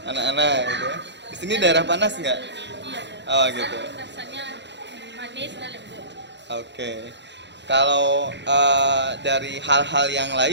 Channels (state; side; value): late; left; 0.52 ms